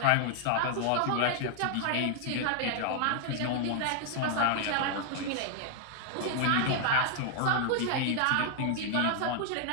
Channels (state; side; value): different; both; correlation 0.00